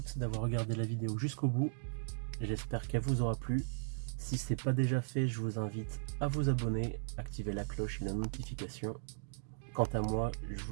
d'avoir regardé la vidéo jusqu'au bout. J'espère qu'elle vous aura plu. Si ce n'est pas déjà fait, je vous invite à vous abonner, activer la cloche et la notification. Quant à moi, je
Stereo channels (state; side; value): silent; left; digital silence